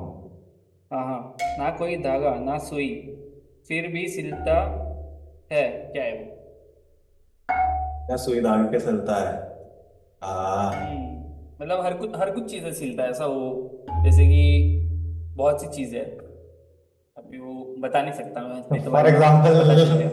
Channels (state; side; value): identical; both; correlation 1.00